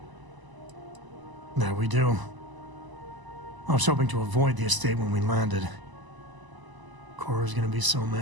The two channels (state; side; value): late; left; 1.0 ms